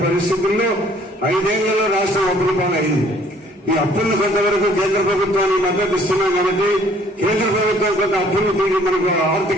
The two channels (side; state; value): both; normal; correlation 0.59